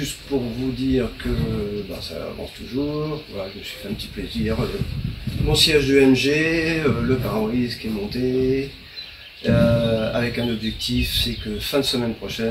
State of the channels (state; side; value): identical; both; correlation 1.00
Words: pour vous dire que ça avance toujours, voilà, je me suis fait un petit plaisir. Mon siège de MG, le pare-brise qui est monté, avec un objectif, c'est que fin de semaine